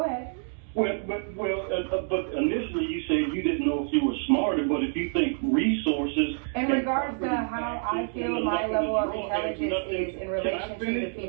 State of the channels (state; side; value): silent; left; 60 dB below the other